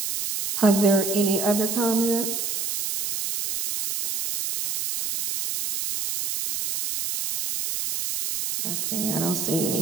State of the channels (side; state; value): right; noise; hiss, 3 dB below the sound